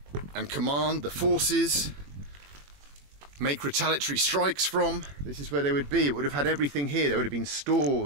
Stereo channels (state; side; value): late; left; 21 ms